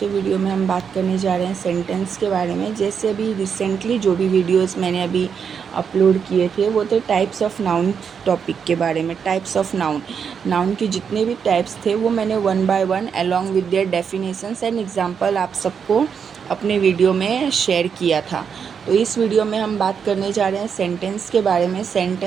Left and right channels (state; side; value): quieter; left; 6.8 dB